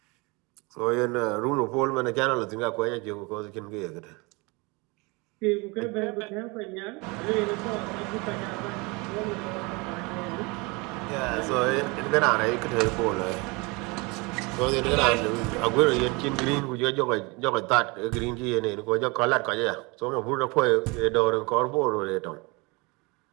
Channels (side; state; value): left; quieter; 27.1 dB